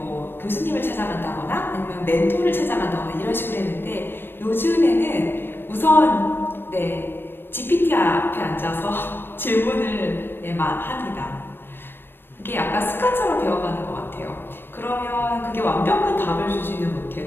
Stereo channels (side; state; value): right; late; 0.099 ms